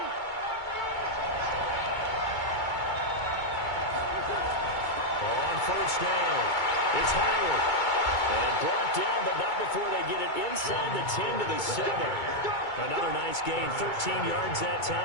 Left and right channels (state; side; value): late; right; 2.2 ms